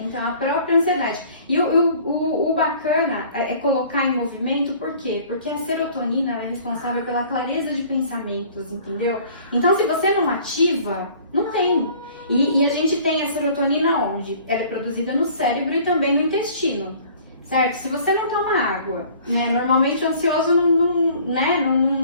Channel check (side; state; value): both; inverted; correlation -0.51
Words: então a própria ansiedade. E o bacana é colocar em movimento, por quê? Porque a serotonina é responsável pela clareza de pensamentos, entendeu? Então se você não ativa, não tem. E a gente tem a serotonina onde? Ela é produzida no cérebro e também no intestino, certo? Se você não toma água, né? Normalmente o ansioso